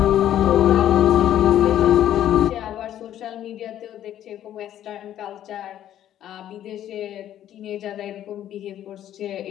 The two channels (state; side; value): quieter; right; 11.5 dB